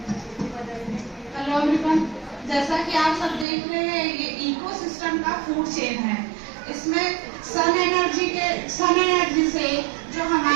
हेलो एवरीवन, जैसा कि आप सब देख रहे हैं ये इकोसिस्टम का फूड चेन है। इसमें सन एनर्जी से जो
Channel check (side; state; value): left; drops out; at 3.5 s